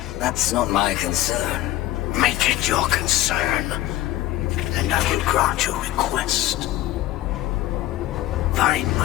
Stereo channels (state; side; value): quieter; right; 15.1 dB